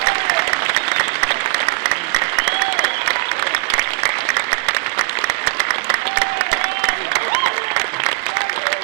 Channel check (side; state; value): left; quieter; 31.4 dB